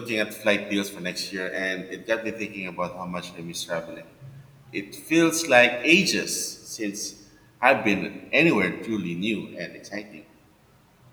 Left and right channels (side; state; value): both; identical; correlation 1.00